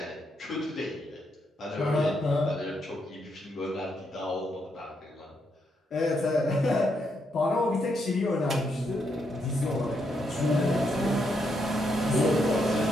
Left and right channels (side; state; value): both; normal; correlation 0.79